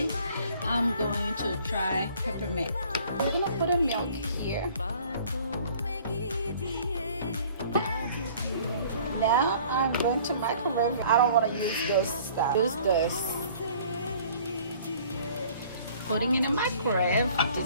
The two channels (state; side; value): inverted; both; correlation -0.53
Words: I'm going to try peppermint. We're gonna put in milk here. Now I'm going to microwave. I don't want to use this stuff. Use this. Putting in a microwave.